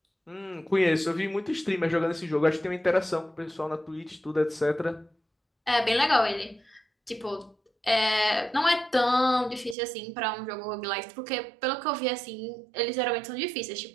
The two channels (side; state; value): left; drops out; at 9.8 s